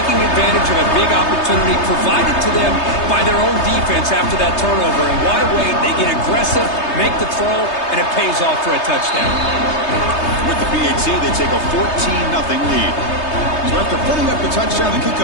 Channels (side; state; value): right; late; 3.3 ms